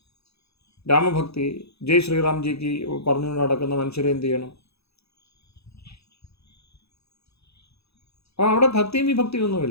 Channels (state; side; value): late; right; 0.79 ms